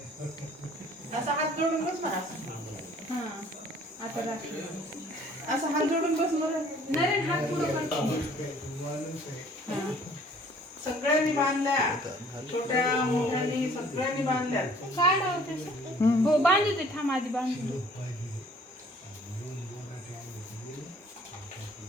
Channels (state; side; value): normal; both; correlation 0.55